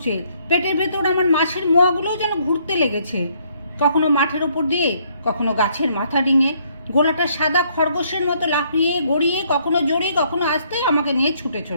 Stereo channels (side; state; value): both; inverted; correlation -0.67